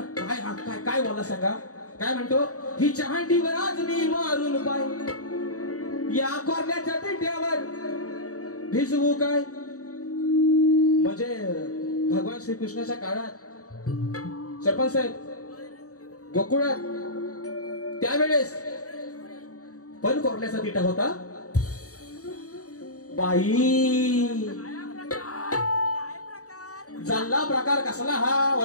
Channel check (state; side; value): late; right; 0.66 ms